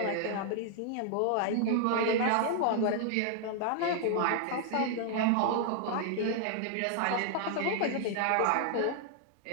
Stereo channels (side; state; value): both; different; correlation 0.00